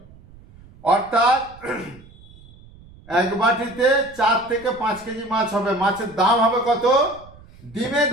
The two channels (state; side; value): noise; right; rumble, 23 dB below the sound